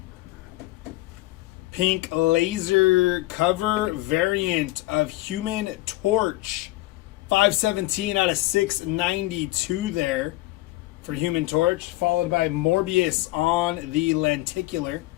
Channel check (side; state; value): right; quieter; 18.6 dB